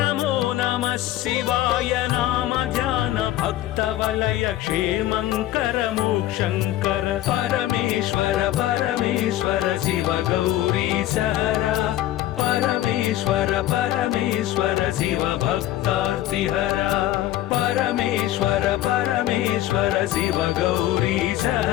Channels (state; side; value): quieter; right; 14.2 dB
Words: नमः शिवाय नाम ध्यान भक्त वलय क्षेमंकर मोक्षंकर परमेश्वर परमेश्वर शिव गौरीश हरा परमेश्वर परमेश्वर शिव भक्तार्तिहरा परमेश्वर परमेश्वर शिव गौरीश